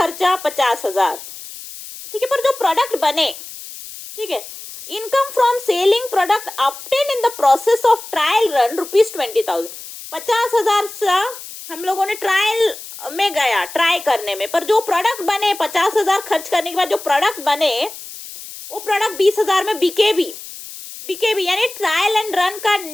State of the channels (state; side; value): noise; left; hiss, 13 dB below the sound